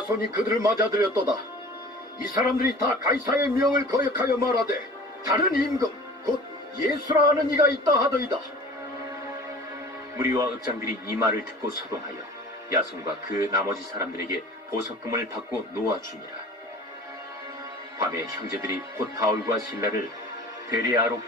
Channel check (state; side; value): normal; both; correlation 0.43